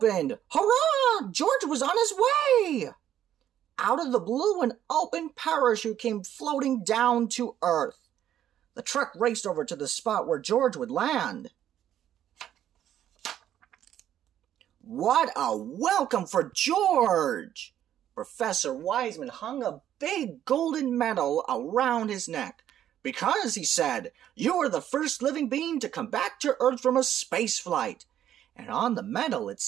Hurrah! George was on his way! Out of the blue, an open parachute came floating down to Earth. The truck raced over to the spot where George would land. What a welcome for George! Professor Wiseman hung a big golden medal around his neck. Because, he said, you are the first living being to come back to Earth from a space flight. And on the medal it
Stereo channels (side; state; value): left; quieter; 11.0 dB